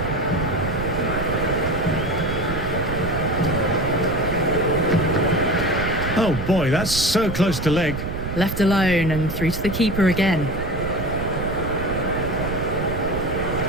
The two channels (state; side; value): noise; right; rumble, 5 dB below the sound